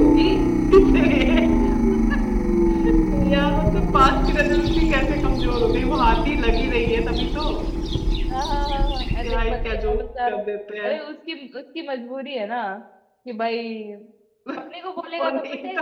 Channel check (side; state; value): both; identical; correlation 1.00